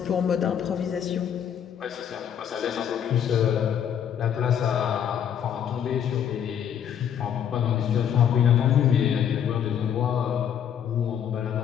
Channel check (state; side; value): quieter; right; 8.9 dB